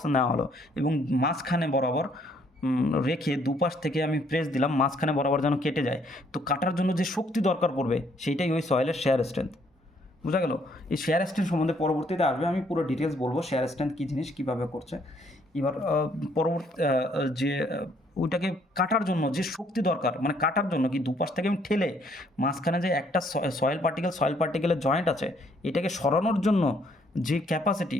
নেওয়া হলো এবং মাঝখানে বরাবর রেখে দুপাশ থেকে আমি প্রেস দিলাম, মাঝখানে বরাবর যেন কেটে যায়। তো কাটার জন্য যে শক্তি দরকার পড়বে সেইটাই ওই সয়েলের শেয়ার স্ট্রেংথ। বোঝা গেল? এই শেয়ার স্ট্রেন্থ সম্বন্ধে পরবর্তীতে আসবে, আমি পুরো ডিটেলস বলবো শেয়ার স্ট্রেন্থ কী জিনিস, কীভাবে করছে। এবার পরবর্তী যে ওইটাকে কাটার জন্য যে শক্তি দরকার, মানে কাটার জন্য কি দুপাশ থেকে আমি ঠেলে মাঝখানে যে একটা সয়েল পার্টিকেলের জয়েন্ট আছে, এটাকে সরানোর জন্য যে capacity,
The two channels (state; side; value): normal; both; correlation 0.67